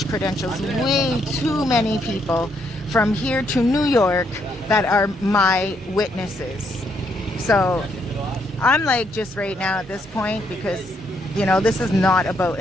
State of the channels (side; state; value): both; normal; correlation 0.74